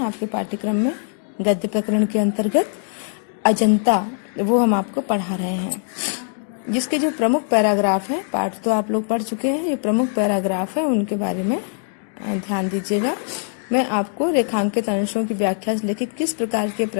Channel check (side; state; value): right; silent; 60 dB below the other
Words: पाठ्यक्रम में गद्य प्रकरण के अंतर्गत अजंता, वो हम आपको पढ़ा रहे हैं। जिसके जो प्रमुख पैराग्राफ है, पाठ तो आप लोग पढ़ चुके हैं, ये प्रमुख पैराग्राफ है, उनके बारे में ध्यान दीजिएगा। मैं आपको रेखांकित अंशों की व्याख्या से लेकर किस प्रकार के